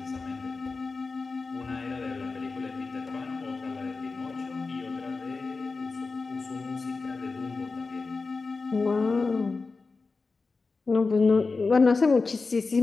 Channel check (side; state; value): right; quieter; 4.1 dB